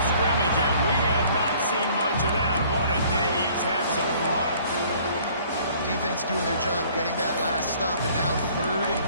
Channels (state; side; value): inverted; both; correlation -0.56